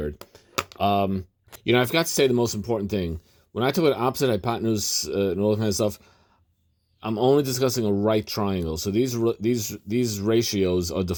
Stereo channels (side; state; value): both; identical; correlation 1.00